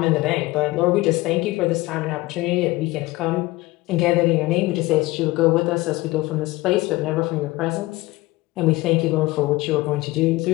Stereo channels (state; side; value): quieter; right; 20.0 dB